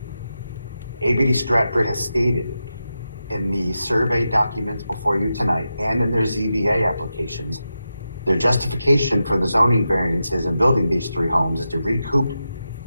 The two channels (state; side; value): inverted; both; correlation -0.89